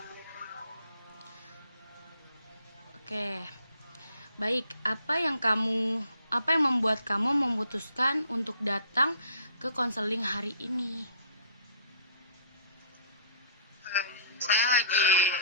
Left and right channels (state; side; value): inverted; both; correlation -0.55